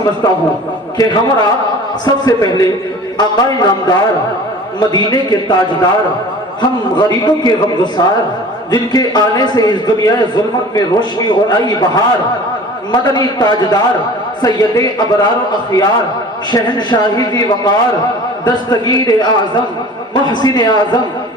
ہوں کہ ہمارا سب سے پہلے آقا نامدار مدینے کے تاجدار ہم غریبوں کے غمگسار جن کے آنے سے اس دنیا ظلمت میں روشنی اور آئی بہار مدنی تاجدار سید ابرار و اخیار شہنشاہی ذی وقار دستگیر اعظم محسن اعظم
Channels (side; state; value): both; normal; correlation 0.42